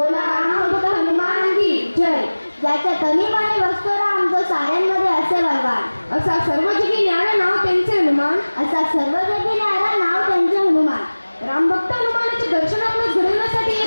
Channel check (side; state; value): both; inverted; correlation -1.00